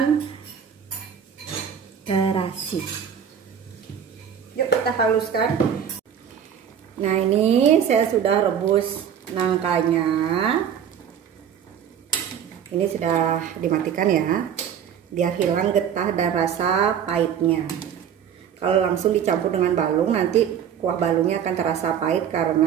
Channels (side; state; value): left; quieter; 8.5 dB